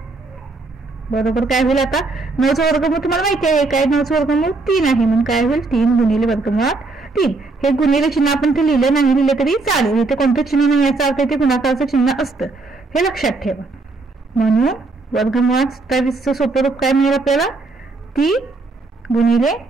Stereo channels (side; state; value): left; quieter; 3.6 dB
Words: बरोबर काय होईल आता 9 चा वर्गमूळ तुम्हाला माहिती आहे काय 9 चा वर्गमूळ 3 आहे, म्हणून काय होईल 3 गुणिले वर्गमुळात 3. हे गुणिले चिन्ह आपण ते लिहिलं नाही लिहिले तरी चालेल, इथे कोणतं चिन्ह नाही याचा अर्थ इथे गुणाकाराचं चिन्ह असतं हे लक्षात ठेवा. म्हणून वर्गमुळात 27 चं सोपे रूप काय मिळेल आपल्याला 3 गुणिले